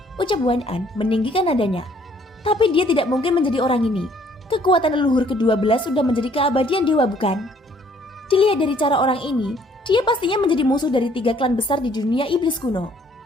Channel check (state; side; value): normal; both; correlation 0.62